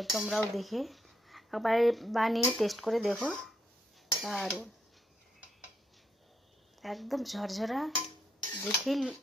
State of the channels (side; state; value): both; normal; correlation 0.77